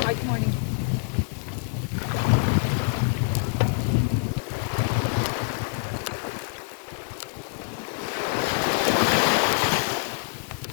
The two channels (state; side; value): quieter; right; 37.7 dB